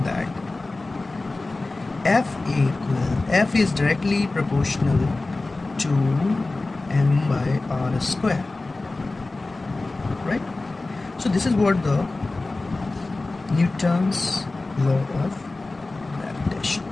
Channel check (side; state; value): right; quieter; 3.2 dB